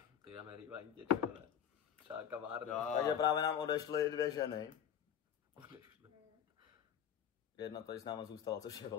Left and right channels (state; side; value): quieter; right; 9.0 dB